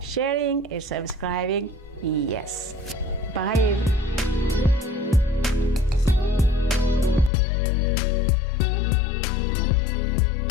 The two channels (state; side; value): drops out; right; at 7.3 s